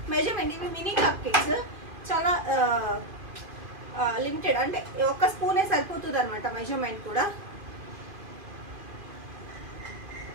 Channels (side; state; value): left; late; 2.5 ms